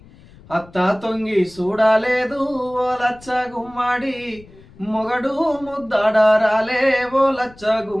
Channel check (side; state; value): left; noise; rumble, 23 dB below the sound